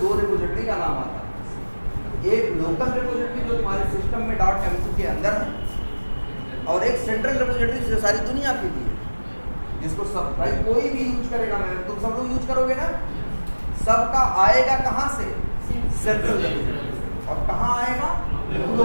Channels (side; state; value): both; inverted; correlation -1.00